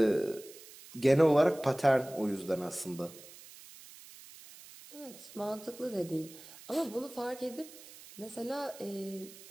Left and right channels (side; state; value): right; noise; hiss, 18 dB below the sound